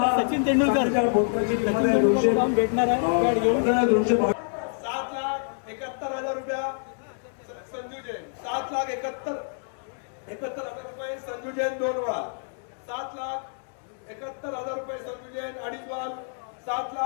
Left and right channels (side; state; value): right; silent; digital silence